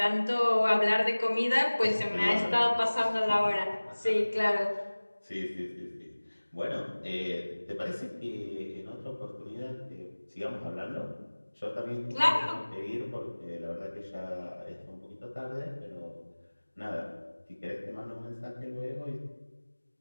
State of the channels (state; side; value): inverted; both; correlation -1.00